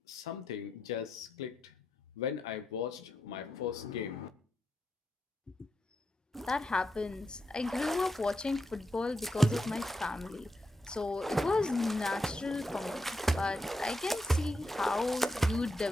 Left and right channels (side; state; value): both; normal; correlation 0.85